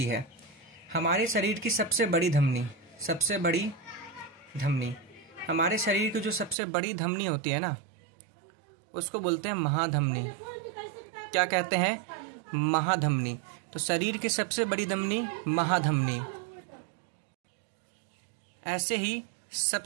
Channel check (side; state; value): left; drops out; at 6.6 s